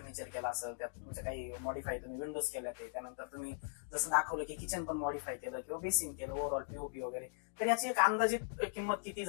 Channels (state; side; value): silent; right; digital silence